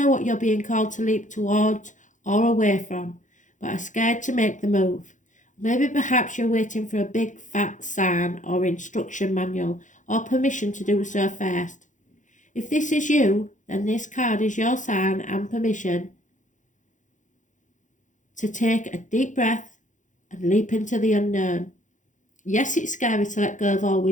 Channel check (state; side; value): late; right; 0.36 ms